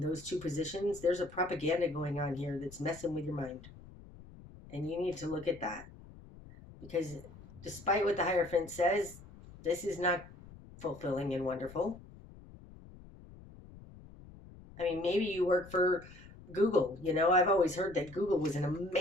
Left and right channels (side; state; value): left; noise; rumble, 19 dB below the sound